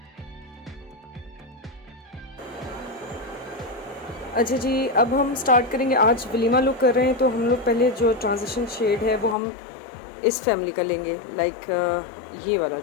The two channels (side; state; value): right; drops out; at 9.3 s